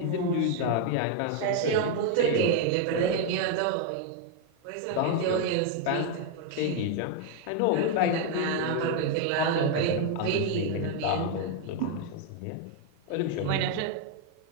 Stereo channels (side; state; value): both; different; correlation 0.01